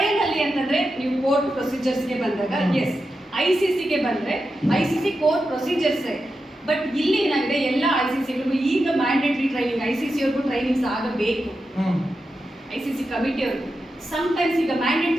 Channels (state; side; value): normal; both; correlation 0.89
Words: ಅಲ್ಲಿ ಅಂತಂದ್ರೆ ನೀವು ಕೋರ್ಟ್ ಪ್ರೊಸೀಜರ್ಸ್ಗೆ ಬಂದಾಗ ಎಸ್, ICCಗೆ ಬಂದ್ರೆ ICC ಕೋರ್ಟ್ ಪ್ರೊಸೀಜರ್ಸ್. ಬಟ್ ಇಲ್ಲಿ ಏನಾಗಿದೆ, ಎಲ್ಲ ICCಗಳಿಗೂ ಈಗ ಮ್ಯಾಂಡೇಟರಿ ಟ್ರೈನಿಂಗ್, ICC ಅವ್ರಿಗೂ ಟ್ರೈನಿಂಗ್ಸ್ ಆಗಬೇಕು. ICC ಕಮಿಟಿಯವ್ರಿಗೂ ಸಮ್ಟೈಮ್ಸ್ ಈಗ